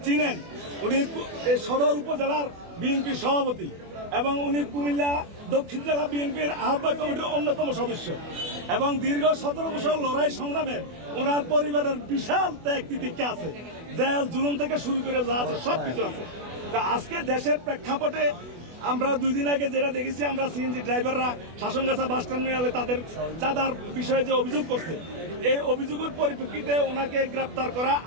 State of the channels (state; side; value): late; left; 24 ms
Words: চিনেন। উনি সদর উপজেলার বিএনপি সভাপতি এবং উনি কুমিল্লা দক্ষিণ জেলা বিএনপির আহ্বায়ক কমিটির অন্যতম সদস্য এবং দীর্ঘ 17 বছর লড়াই সংগ্রামে ওনার পরিবারের বিশাল ত্যাগ তিতিক্ষা আছে, জেল জুলুম থেকে শুরু করে যা আছে সবকিছু আছে। তা আজকে দেশের প্রেক্ষাপটে আমরা 2 দিন আগে যেটা দেখেছি, আমরা সিএনজি ড্রাইভাররা শাসনগাছা বাস টার্মিনালে তাদের চাঁদার বিষয়ে যে অভিযোগ করছে, এই অভিযোগের পরিপ্রেক্ষিতে ওনাকে গ্রেপ্তার করা